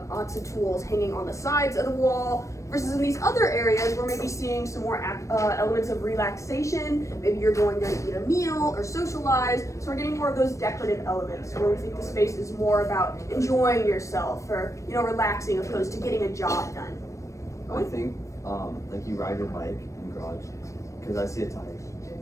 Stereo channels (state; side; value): late; right; 0.15 ms